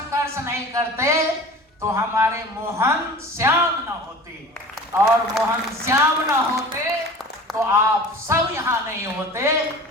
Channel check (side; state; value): both; normal; correlation 0.39